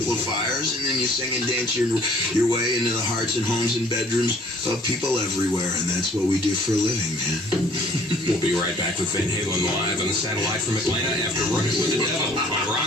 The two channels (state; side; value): normal; both; correlation 0.56